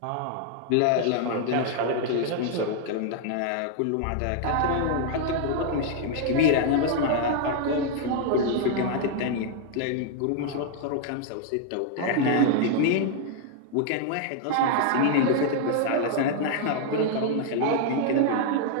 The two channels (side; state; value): both; different; correlation 0.00